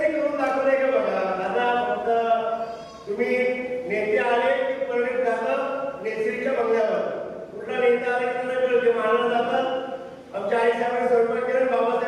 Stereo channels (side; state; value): both; identical; correlation 1.00